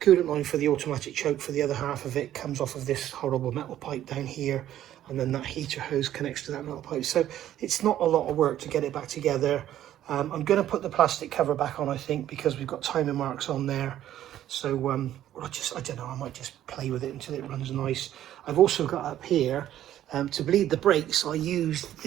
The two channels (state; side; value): quieter; left; 12.1 dB